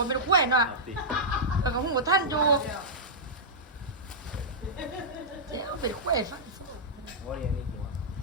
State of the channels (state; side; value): normal; both; correlation -0.11